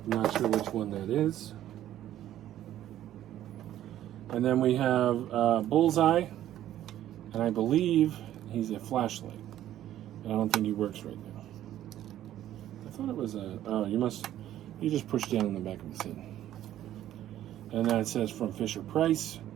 I'm not sure which one that is. And then we have Bullseye, and I believe he's a flashlight. I don't think he works right now. I thought it was a... Oh, you just push down in the back of his head. And then it says from Fisher Price.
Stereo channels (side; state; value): left; quieter; 12.4 dB